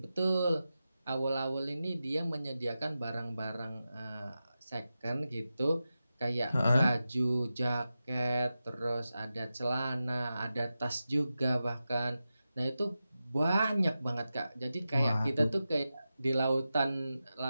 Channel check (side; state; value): both; inverted; correlation -0.92